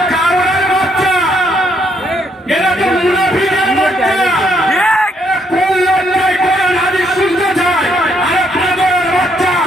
কারোর বাচ্চা, এরা তো মুনাফিকের বাচ্চা। কোন লড়াই কোরআন হাদিস শুনতে চায়? আরে পাগলের বাচ্চা,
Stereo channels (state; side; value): normal; both; correlation 0.72